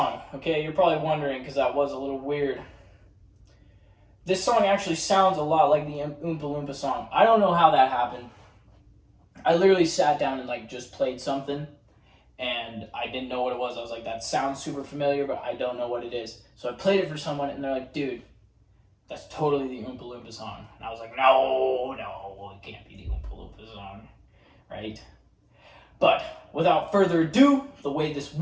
Okay, you're probably wondering because that was a little weird. This song actually sounds a lot like the Oompa Loompa song. I don't know how that happened. I literally sat down and like just played something and I didn't know what it was. I was like, that sounds super familiar, but I don't know what it is. So I played it for someone and they're like, dude, that's totally the Oompa Loompa song. And I was like, no, it can't be the Oompa Loompa song, right? But without further ado, the way this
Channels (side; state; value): both; identical; correlation 1.00